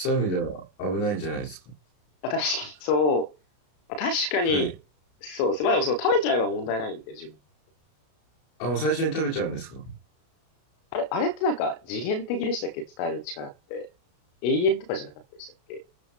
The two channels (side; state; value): right; late; 33 ms